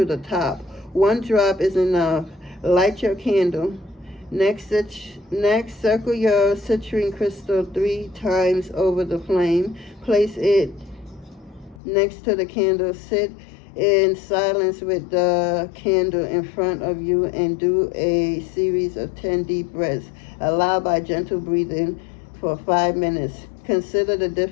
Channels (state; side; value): drops out; right; at 11.8 s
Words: the top. One drop is enough. Light your candle. Next, circle your citrine crystal 3 times over the flame. Place it next to the candle. Sit in silence with the candle in front of you and do a series of 10 deep breaths. Allow by gentle breathing for 5 minutes. Consider the